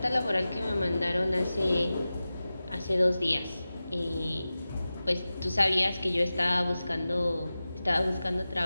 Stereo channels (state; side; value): inverted; both; correlation -0.95